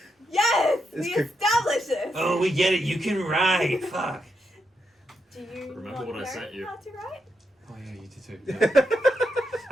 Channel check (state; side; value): normal; both; correlation 0.83